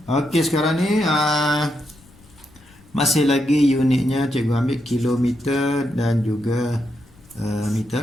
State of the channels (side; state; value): left; noise; rumble, 27 dB below the sound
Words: Okey, sekarang ni masih lagi unitnya cikgu ambil kilometer dan juga